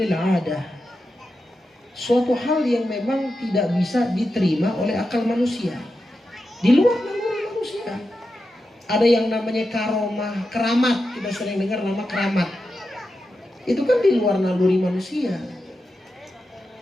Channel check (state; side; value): normal; both; correlation 0.89